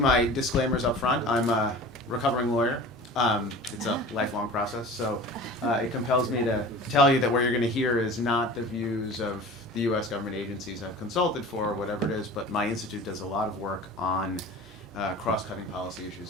disclaimers up front. I'm a recovering lawyer. It's a lifelong process, so it compels me to tell you that what you're going to hear is not the views of the U.S. government agencies I've consulted for, or whatever it is, but my institute does a lot of work on cross-cutting policy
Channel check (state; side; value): normal; both; correlation 0.39